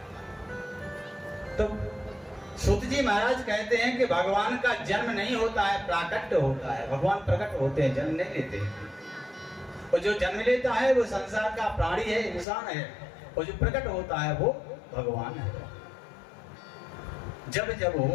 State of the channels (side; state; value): right; drops out; at 12.5 s